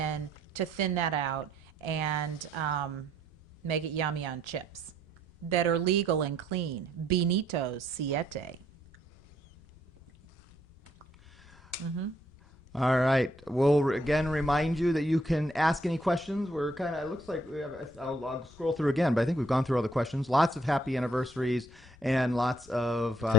to thin that out and make it yummy on chips that are legal and clean. Benito's Siete. All right. We'll again remind you that you can ask any questions. We're kind of, it looks like we have, I'll scroll through again, but I think we've gone through all the questions. Lots of happy anniversaries and lots of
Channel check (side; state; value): both; normal; correlation 0.69